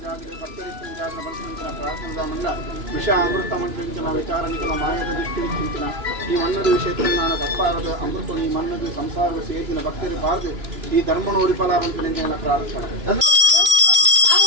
ವಿಷ ಅಮೃತ ಮಂತ್ರಿಂచిన ವಿಚಾರ ನಿಖಲ ಮಾಯದ ದೃಷ್ಟಿಂచిన ಈ ಮನ್ನದು ವಿಷಯತ್ರಜ್ಞಾನ ತಪ್ಪಾರದು ಅಮೃತ ಈ ಮನ್ನದು ಸಂಸಾರದ ಸೇತಿನ ಭಕ್ತರು ಬಾರದು ಈ ಧರ್ಮನ ಉಳಿಪಲಾರಂತ ಪ್ರಾರ್ಥನೆ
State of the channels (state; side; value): late; left; 3.0 ms